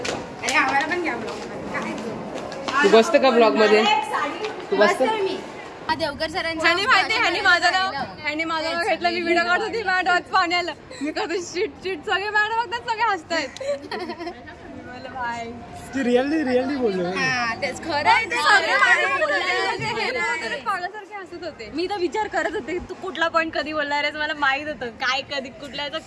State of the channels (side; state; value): both; identical; correlation 1.00